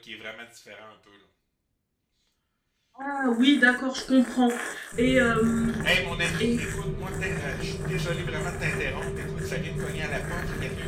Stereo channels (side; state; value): both; identical; correlation 1.00